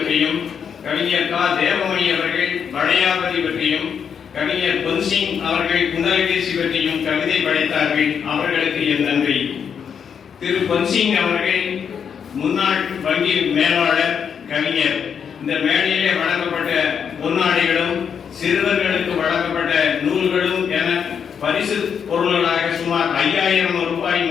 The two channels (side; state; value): right; quieter; 7.3 dB